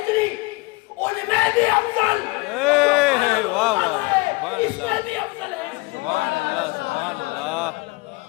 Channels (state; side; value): quieter; right; 24.9 dB